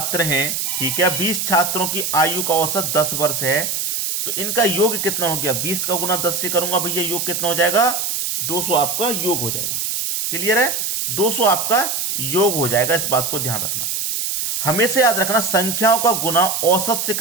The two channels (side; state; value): right; noise; hiss, 1 dB below the sound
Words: हैं, ठीक है, 20 छात्रों की आयु का औसत 10 वर्ष है, तो इनका योग कितना हो गया, 20 का गुना 10 से करूंगा भैया, योग कितना हो जाएगा, 200 आपका योग हो जाएगा। क्लियर है, 200 आपका योग हो जाएगा, इस बात को ध्यान रखना। हमेशा याद रखना, संख्याओं का गुना औसत से